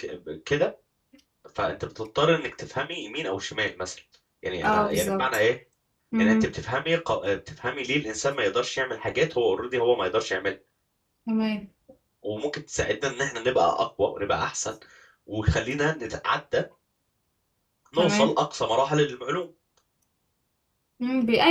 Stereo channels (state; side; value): identical; both; correlation 1.00